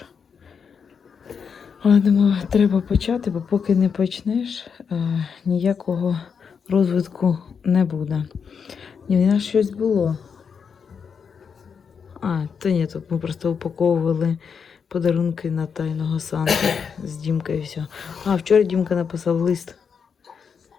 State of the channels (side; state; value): right; quieter; 6.4 dB